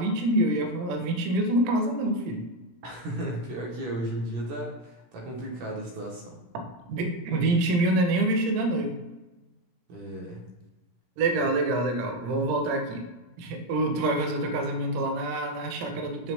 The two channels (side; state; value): left; late; 17 ms